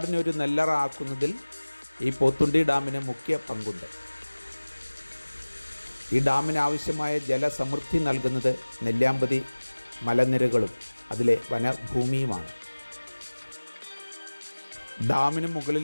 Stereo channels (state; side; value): inverted; both; correlation -1.00